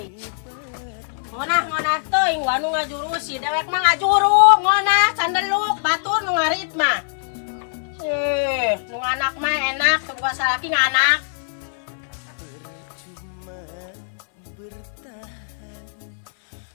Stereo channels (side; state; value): right; silent; 62 dB below the other